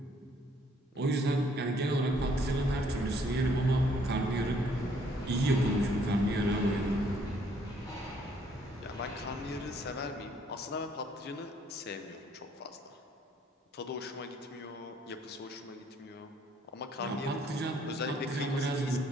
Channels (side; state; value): both; normal; correlation 0.65